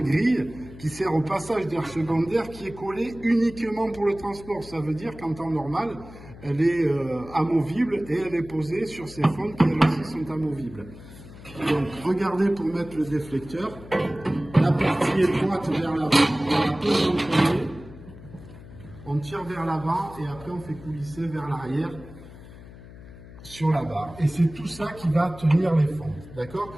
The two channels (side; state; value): left; noise; hum, 17 dB below the sound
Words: qui sert au passage d'air secondaire qui est collé uniquement pour le transport. Ça veut dire qu'en temps normal, elle est amovible et elle est posée sur ces fentes qui elles aussi sont amovibles. Donc regardez pour mettre le déflecteur, la partie étroite vers l'avant, on la pose en premier, on tire vers l'avant et après on fait coulisser vers l'arrière sur la barre. Et c'est tout ça qui va tenir les fentes,